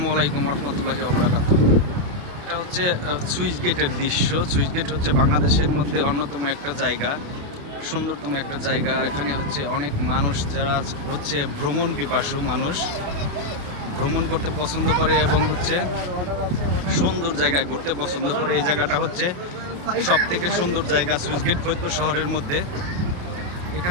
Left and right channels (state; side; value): late; left; 28 ms